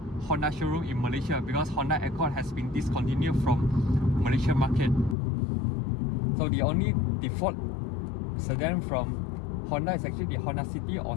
Honda showroom in Malaysia, because Honda Accord has been discontinued from Malaysia market. So the only default sedan from Honda is actually the Honda City or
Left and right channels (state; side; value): drops out; right; at 5.2 s